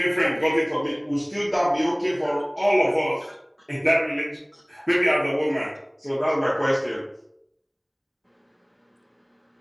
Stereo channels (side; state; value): both; identical; correlation 1.00